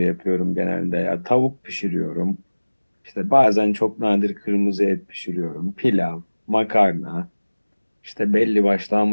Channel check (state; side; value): inverted; both; correlation -1.00